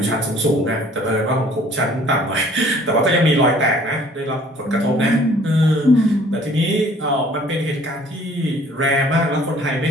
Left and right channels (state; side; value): normal; both; correlation 0.55